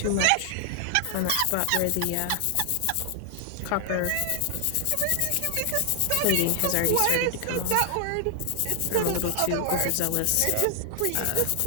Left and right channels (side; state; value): both; different; correlation 0.00